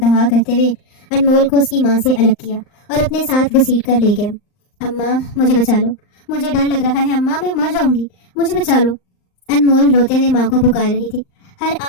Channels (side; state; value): right; late; 39 ms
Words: کرتے ہوئے انمول کو اس کی ماں سے الگ کیا اور اپنے ساتھ گھسیٹ کر لے گیا۔ اماں مجھے بچا لو، مجھے ڈر لگ رہا ہے اماں، میں مر جاؤں گی، مجھے بچا لو۔ انمول روتے ہوئے ماں کو پکار رہی تھی۔ ہر